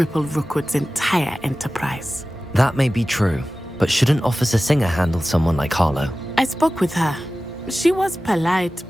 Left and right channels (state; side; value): normal; both; correlation 0.96